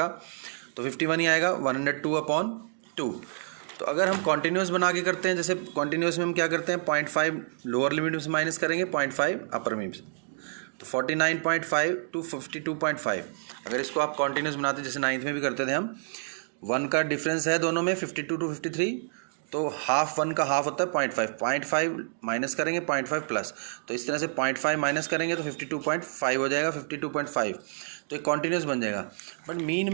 तो 51 ही आएगा, 102/2। तो अगर हम कॉन्टिन्यूस बना के करते हैं, जैसे कॉन्टिन्यूस में हम क्या करते हैं, 0.5 लोअर लिमिट में से माइनस करेंगे, 0.5 अपर लिमिट से, तो 49.5 टू 52.5। अगर इसको आप कॉन्टिन्यूस बनाते हैं, जैसे 9th में भी करते थे हम, 1 का डिफरेंस है दोनों में 52 टू 53, तो हाफ 1 का हाफ होता है 0.5 माइनस करेंगे 0.5 प्लस, तो इस तरह से 0.5 माइनस करेंगे तो 52.5 हो जाएगा, 52.5, तो एक कॉन्टिन्यूस बन जाएगा। बट मीन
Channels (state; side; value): silent; left; digital silence